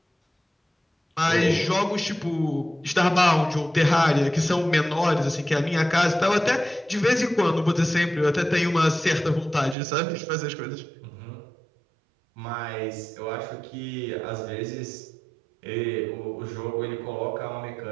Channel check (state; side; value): drops out; left; at 9.8 s